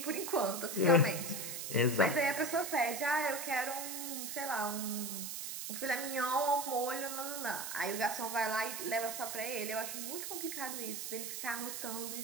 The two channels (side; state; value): right; noise; hiss, 5 dB below the sound